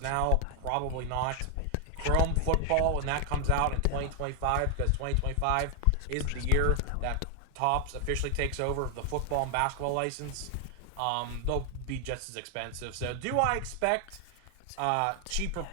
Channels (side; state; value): both; different; correlation 0.00